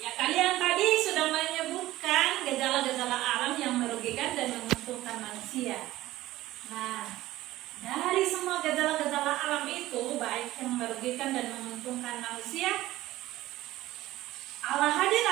kalian tadi sudah menyebutkan gejala-gejala alam yang merugikan dan menguntungkan manusia. Nah, dari semua gejala-gejala alam itu, baik yang merugikan dan menguntungkan manusia, Allah hadir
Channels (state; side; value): quieter; left; 16.1 dB